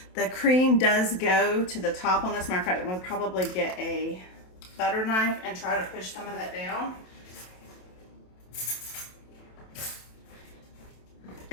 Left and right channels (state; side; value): late; right; 27 ms